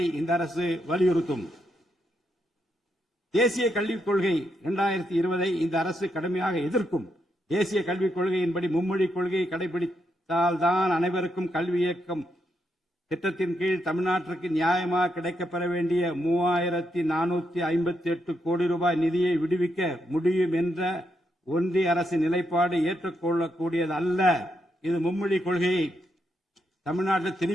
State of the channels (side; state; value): both; normal; correlation 0.81